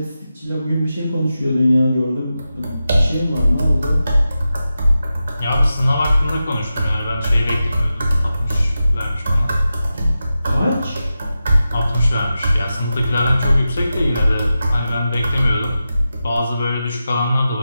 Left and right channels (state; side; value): inverted; both; correlation -0.91